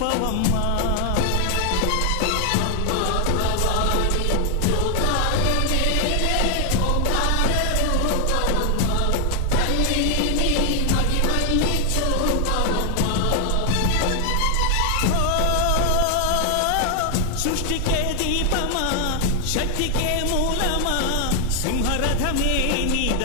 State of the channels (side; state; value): both; different; correlation 0.00